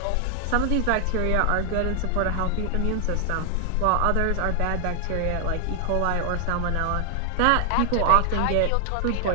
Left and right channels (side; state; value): both; different; correlation 0.00